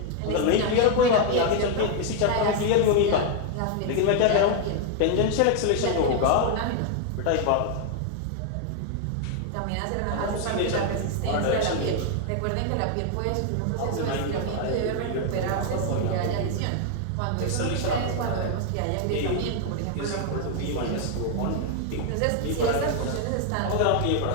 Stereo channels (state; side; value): different; both; correlation 0.00